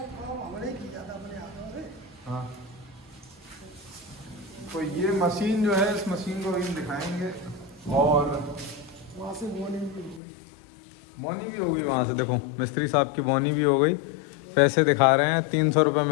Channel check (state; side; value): drops out; right; at 10.2 s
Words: काम हमने किया था अपने हाथों से। हाँ, तो ये मशीन जो है, इस मशीन को भी हम दिखाएंगे। और वहाँ से मॉर्निंग भी हो गई। बोनी भी होगी वहाँ से, देखो मिस्त्री साहब की बोनी भी हो गई। पैसे दिखा रहे हैं, 300 रुपये